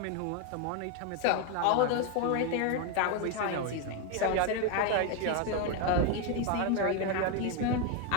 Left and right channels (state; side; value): different; both; correlation 0.01